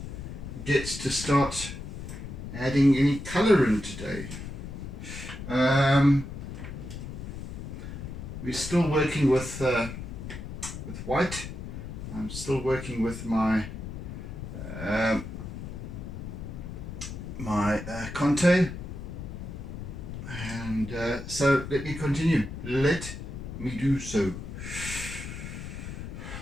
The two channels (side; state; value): left; noise; rumble, 8 dB below the sound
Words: get to start adding any colour in today. We're still working with white. I'm still working with my Conte, and so let me continue. Let me do so.